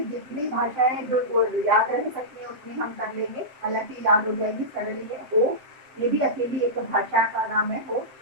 जितनी भाषाएं जो याद रह सकती है उतनी हम कर लेंगे, हालांकि याद हो जाएगी, सरल है। हो ये भी अकेली एक भाषा का नाम है, हो।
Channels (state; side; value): late; left; 7.7 ms